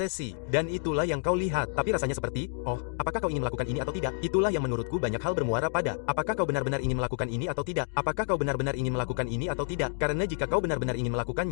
dan itulah yang kau lihat. Tapi rasanya seperti, oh, apakah kau ingin melakukan ini atau tidak? Itulah yang menurutku banyak hal bermuara pada, apakah kau benar-benar ingin melakukan ini atau tidak? Apakah kau benar-benar ingin melakukan ini atau tidak? Karena jika kau benar-benar ingin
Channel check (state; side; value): silent; right; 58 dB below the other